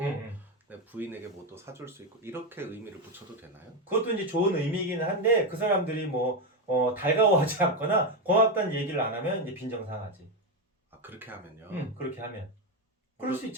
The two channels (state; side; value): normal; both; correlation 0.09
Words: 내 부인에게 뭐 또 사줄 수 있고 이렇게 의미를 붙여도 되나요? 그것도 이제 좋은 의미이긴 한데 그 사람들이 뭐 달가워하지 않거나 고맙다는 얘기를 안 하면 이제 빈정상하지. 아 그렇게 하면요. 그렇게 하면 그럴 수